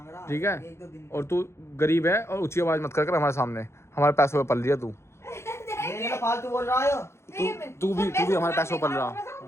रहा। ठीक है। एक दो दिन और तू गरीब है, और ऊंची आवाज मत कर हमारे सामने, हमारे पैसों पे पल रही है तू। ये ना फालतू बोल रहा है। तू भी हमारे पैसों पे पल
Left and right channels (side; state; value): right; late; 0.13 ms